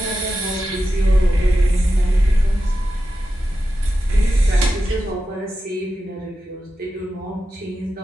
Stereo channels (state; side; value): normal; both; correlation 0.91